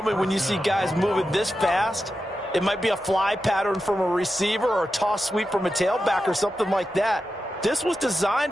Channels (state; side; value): normal; both; correlation 0.90